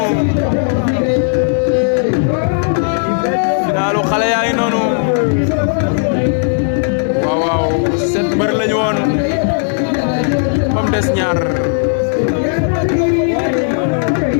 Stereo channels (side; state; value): right; silent; digital silence